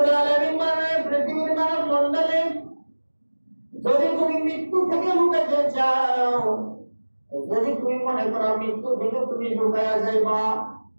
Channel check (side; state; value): both; inverted; correlation -1.00